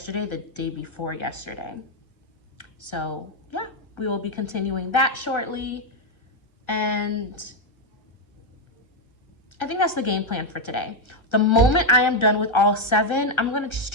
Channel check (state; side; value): late; right; 1.3 ms